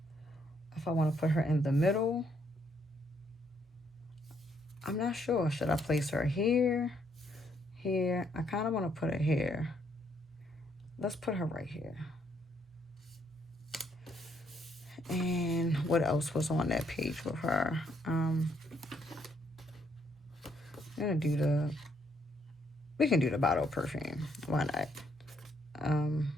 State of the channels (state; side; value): normal; both; correlation 0.71